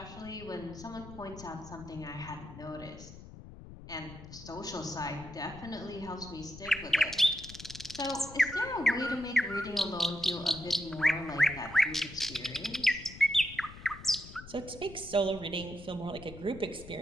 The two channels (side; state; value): left; noise; rumble, 15 dB below the sound